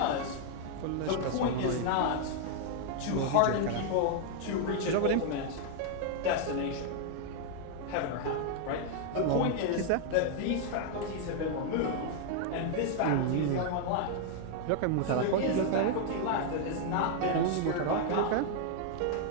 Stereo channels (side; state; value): both; different; correlation 0.00